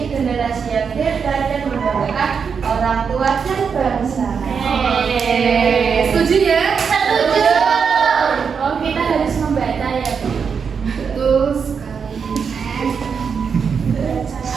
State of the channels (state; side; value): quieter; left; 6.2 dB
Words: generasi yang hebat dan membanggakan orang tua dan bangsa. Setuju ya? Setuju. Oh, kita harus membaca ya, Bu. Betul sekali.